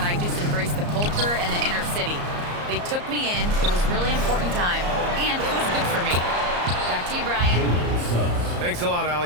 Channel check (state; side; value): late; left; 34 ms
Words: I just embraced the culture and the inner city. They took me in, it was a really important time, and it was good for me." Back to you, Brian. Thanks a lot,